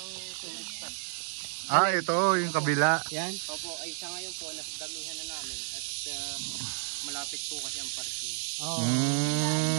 tourist spot. Ah, ito yung kabila. Yan? Opo, ay sa ngayon po, nasdamihan na namin at malapit po kasi ang parking.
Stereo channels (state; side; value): silent; left; digital silence